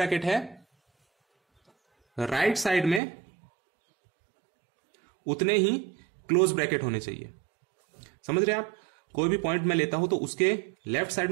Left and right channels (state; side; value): drops out; left; at 3.0 s